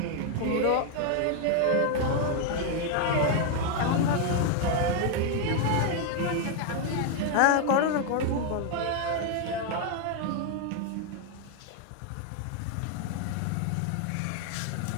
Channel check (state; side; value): different; both; correlation 0.01